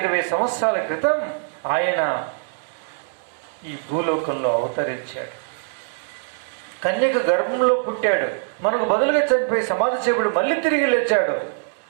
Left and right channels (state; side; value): silent; left; digital silence